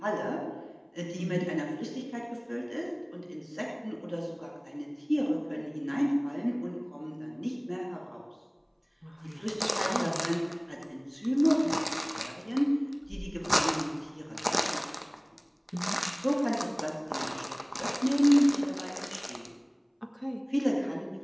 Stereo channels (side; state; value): both; identical; correlation 1.00